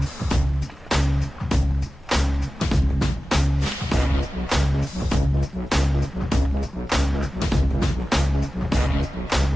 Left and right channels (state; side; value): normal; both; correlation 0.95